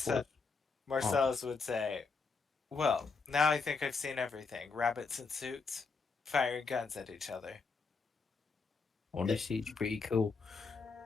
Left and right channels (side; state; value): right; quieter; 4.6 dB